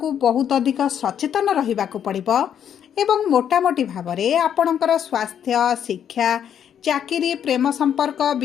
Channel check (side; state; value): right; quieter; 9.0 dB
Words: बहुत अधिक सचेतन रहिबाको पड़िबो एवं मोटामोटी भावरे आपणकर स्वास्थ्य शिक्षा चाकरी प्रेम संपर्क